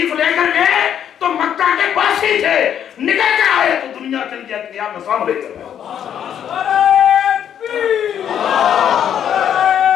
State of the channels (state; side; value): quieter; right; 9.3 dB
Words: لے کر گئے تو مکہ کے باسی تھے، نکل کر آئے تو دنیا کے لیے نیا نظام لے کر آئے.